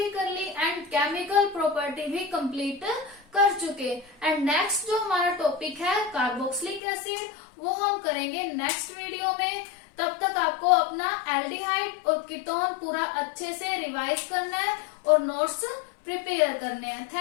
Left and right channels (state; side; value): drops out; right; at 6.8 s